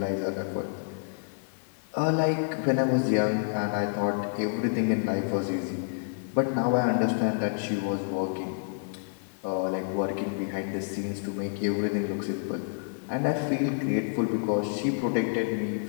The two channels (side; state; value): right; silent; 55 dB below the other